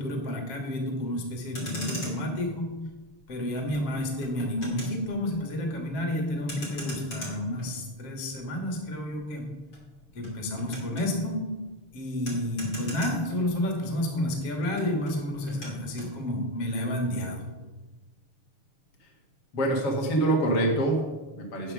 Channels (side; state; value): right; late; 6.8 ms